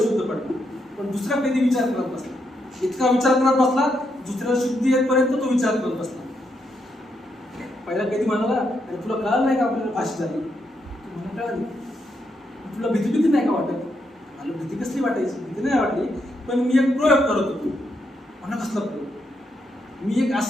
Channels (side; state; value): both; normal; correlation 0.80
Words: पडला, पण दुसरा कैदी विचार करत बसला. इतका विचार करत बसला, दुसऱ्याला शुद्धी येईपर्यंत तो विचार करत बसला. पहिला कैदी म्हणाला, अरे तुला कळलं नाही का आपल्याला फाशी झाली? मला कळाली. तुला भीती नाही का वाटत? मला भीती कसली वाटायची? भीती नाही वाटली, पण मी एक प्रयोग करत होतो. म्हणा कसला प्रयोग? मी एक